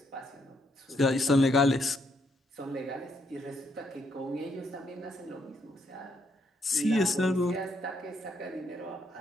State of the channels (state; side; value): normal; both; correlation 0.74